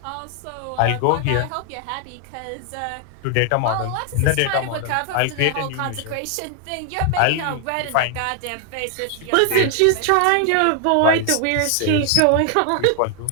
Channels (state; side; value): different; both; correlation 0.00